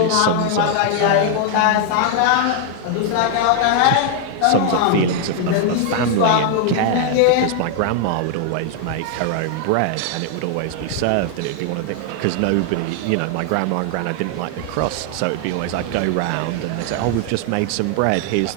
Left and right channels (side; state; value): both; different; correlation 0.00